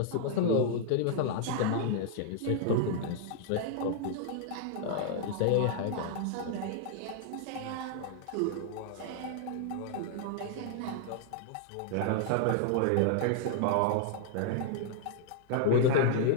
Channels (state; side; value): different; both; correlation 0.00